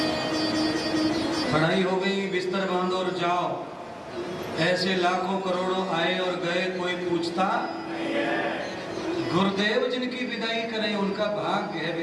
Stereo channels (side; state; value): both; identical; correlation 1.00